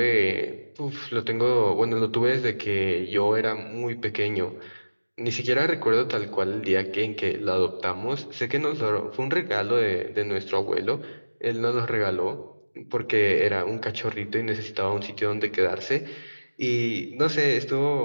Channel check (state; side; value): inverted; both; correlation -1.00